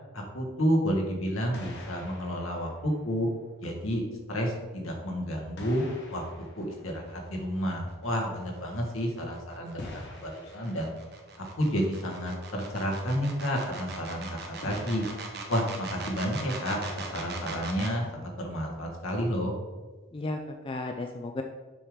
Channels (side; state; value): both; normal; correlation 0.63